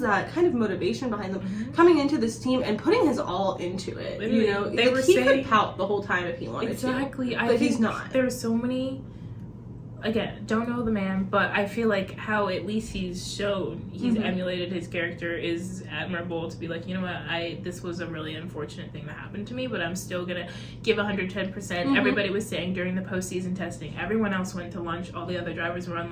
kind of motivation behind them coming into this team and putting his all into it. You know, he could pout the whole time if he wanted to. But he's not. There's so many again, don't know the man, but I feel like how at least he's shown he's emulated his character is admirable. To be like, you know what, this was a really unfortunate thing that happened to me, but I'm still gonna give 110%. Everybody was saying during the postseason testing, everyone else went to lunch, all the other drivers were on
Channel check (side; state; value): both; identical; correlation 1.00